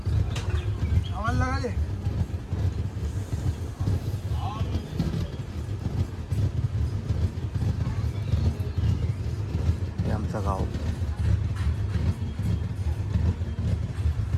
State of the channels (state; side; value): identical; both; correlation 1.00